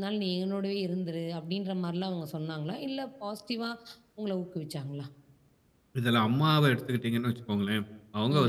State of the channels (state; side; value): identical; both; correlation 1.00